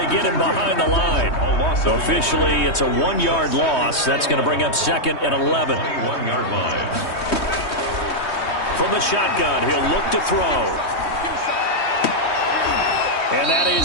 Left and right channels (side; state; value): right; late; 3.2 ms